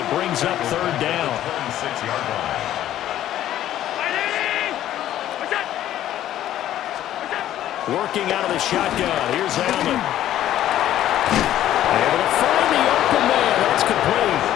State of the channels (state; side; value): quieter; right; 12.4 dB